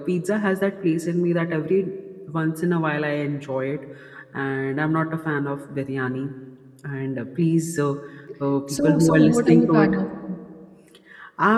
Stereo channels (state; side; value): identical; both; correlation 1.00